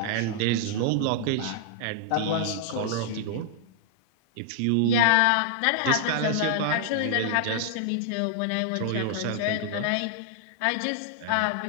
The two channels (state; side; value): different; both; correlation -0.01